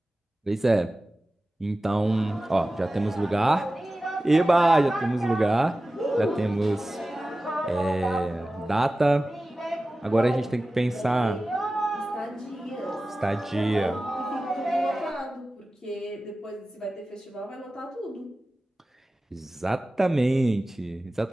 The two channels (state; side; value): normal; both; correlation 0.96